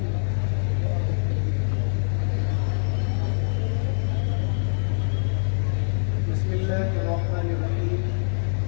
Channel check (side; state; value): right; silent; 59 dB below the other